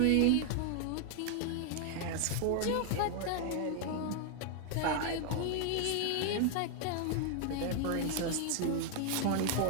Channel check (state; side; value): different; both; correlation 0.00